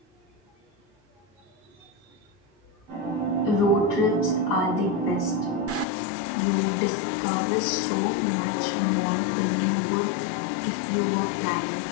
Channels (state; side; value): drops out; right; at 5.9 s